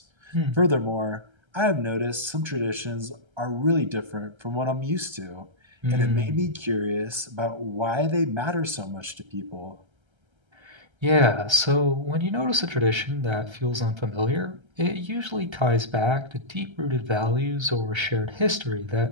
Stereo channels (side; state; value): left; late; 1.3 ms